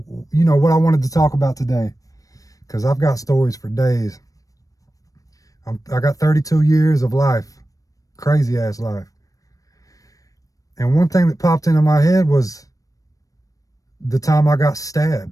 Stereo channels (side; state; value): right; late; 0.16 ms